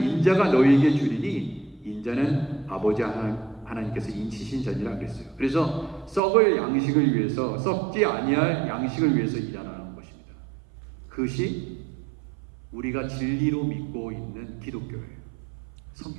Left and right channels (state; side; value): drops out; left; at 6.2 s